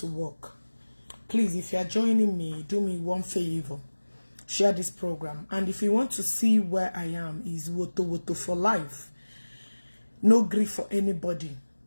work. Please, if you are joining me, do me one favor. Share this program. And if you want to see where I am, is Woto for life. No grief for anybody.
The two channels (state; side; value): inverted; both; correlation -1.00